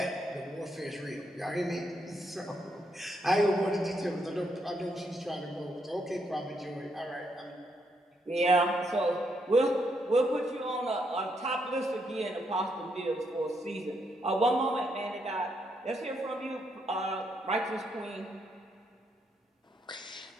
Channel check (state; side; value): normal; both; correlation 0.77